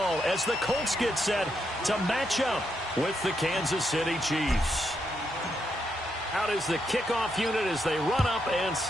as the Colts get set to match up with the Kansas City Chiefs. Out is the kickoff unit as they run up and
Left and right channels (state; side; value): normal; both; correlation 0.80